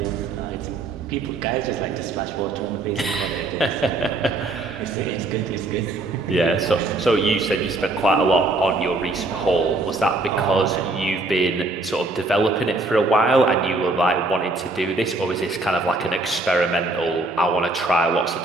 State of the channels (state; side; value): quieter; left; 3.1 dB